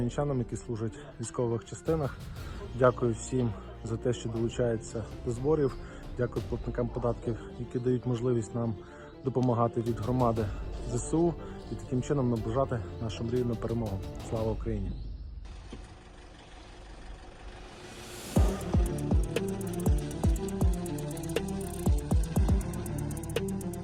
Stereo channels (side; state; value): both; identical; correlation 1.00